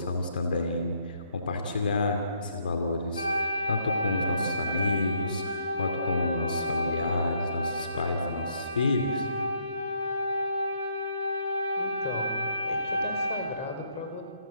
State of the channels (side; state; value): both; inverted; correlation -0.71